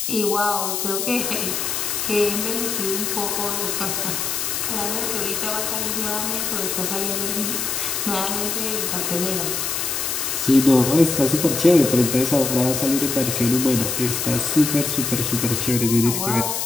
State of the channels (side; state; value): left; noise; hiss, 1 dB below the sound